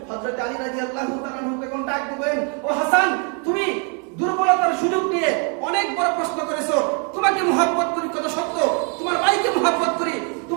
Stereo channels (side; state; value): left; quieter; 38.3 dB